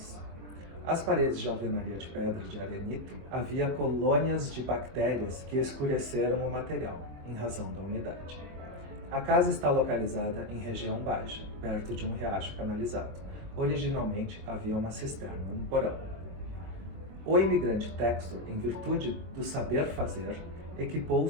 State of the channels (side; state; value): left; late; 23 ms